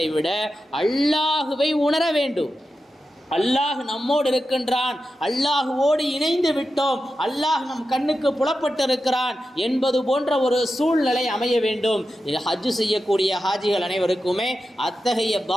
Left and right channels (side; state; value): both; normal; correlation 0.91